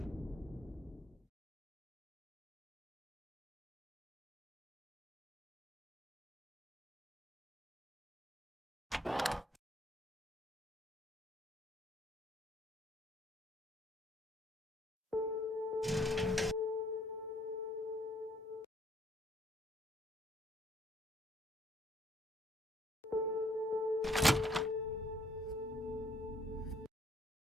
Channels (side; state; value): both; normal; correlation 0.66